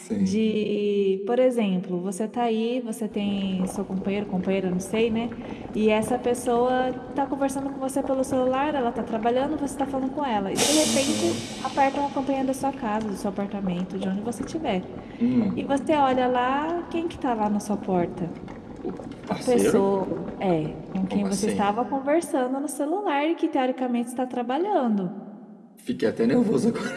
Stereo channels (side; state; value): both; identical; correlation 1.00